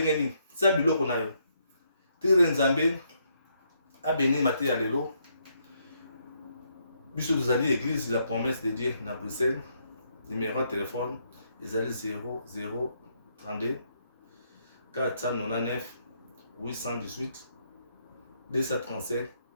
sa biloko na yo tire nzambe a béni maté ya lelo biso vous allez église la promesse de Dieu na Bruxelles numéro de téléphone ils allaient 0032 499 818 235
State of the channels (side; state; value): both; inverted; correlation -0.75